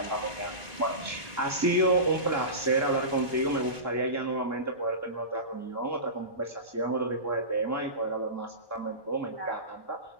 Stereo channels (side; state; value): right; late; 1.2 ms